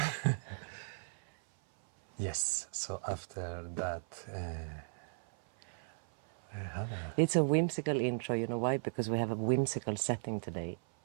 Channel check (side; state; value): left; silent; 53 dB below the other